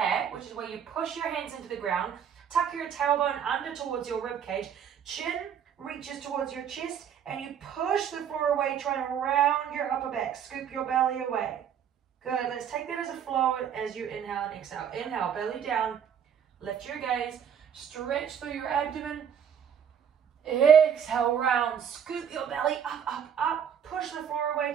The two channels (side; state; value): left; quieter; 8.2 dB